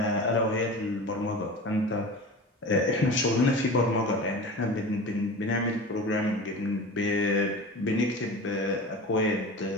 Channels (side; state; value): both; normal; correlation 0.33